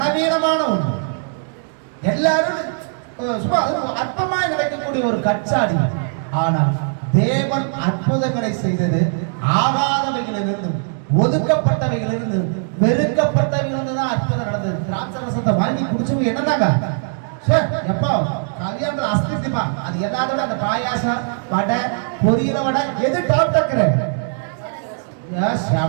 ஒண்ணு, எல்லாரும் சும்மா அற்பமா நடக்கக்கூடிய ஒரு கச்சாடி. ஆனால் தேவன் அற்புதங்களை செய்தது ஆகாதவைகளிலிருந்து, ஒதுக்கப்பட்டவைகளிலிருந்து, வெறுக்கப்பட்டவைகளிலிருந்து தான் அற்புதம் நடந்தது. திராட்சை ரசத்தை வாங்கி குடிச்சவங்க என்னன்னாங்க, எப்போ கல்யாணத்துல அஸ்திப்பா அது எல்லாத்தோட அந்த பாயாசம், வடை, பொரியல வடை எது டாப் டக்கற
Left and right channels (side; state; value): left; silent; digital silence